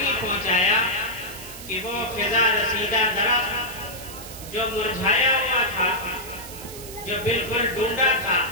پہنچایا کہ وہ فضا رسیدہ درخت جو مرجھایا ہوا تھا، جو بالکل ڈھونڈا تھا،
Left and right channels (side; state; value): right; noise; hiss, 13 dB below the sound